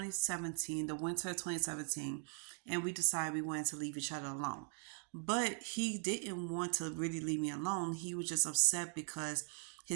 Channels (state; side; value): silent; left; 51 dB below the other